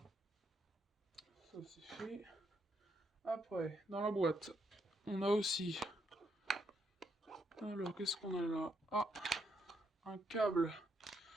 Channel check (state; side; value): normal; both; correlation 0.76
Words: Ça c'est fait. Après, dans la boîte, on a aussi... Alors, qu'est-ce qu'on a là? Ah, un câble.